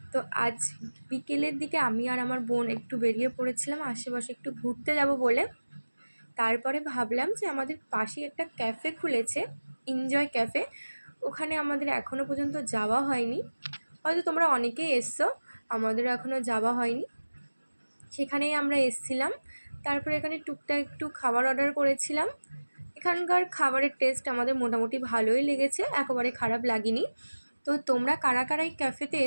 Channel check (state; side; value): inverted; both; correlation -1.00